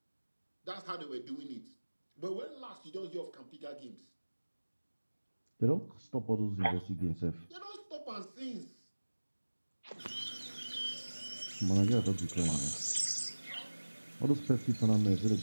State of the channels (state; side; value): inverted; both; correlation -1.00